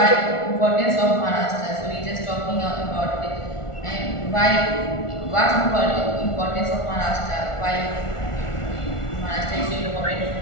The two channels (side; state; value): right; late; 1.4 ms